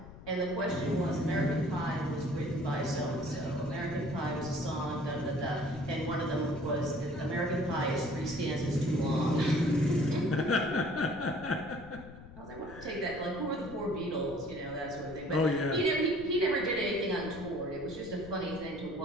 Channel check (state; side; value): noise; left; rumble, 17 dB below the sound